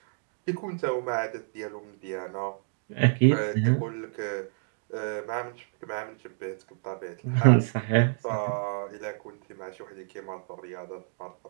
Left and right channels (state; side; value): silent; left; digital silence